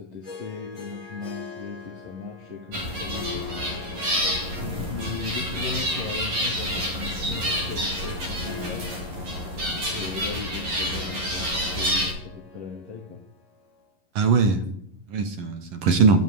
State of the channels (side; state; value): left; late; 11 ms